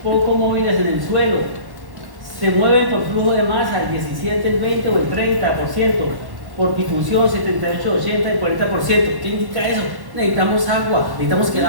poco móviles en el suelo. Se mueven por flujo de masa, el 17, el 20 o el 30%. por difusión 78, 80 y 40%. ¿Qué indica eso? Necesitamos agua, necesitamos que el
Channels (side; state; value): left; late; 1.1 ms